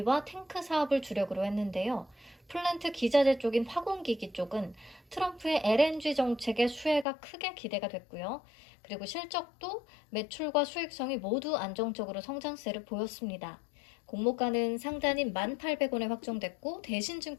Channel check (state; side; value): drops out; right; at 7.1 s